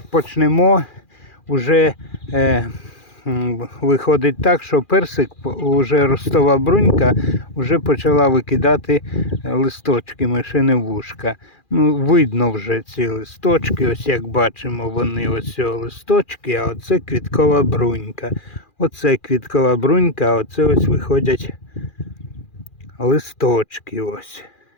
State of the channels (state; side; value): late; right; 2.4 ms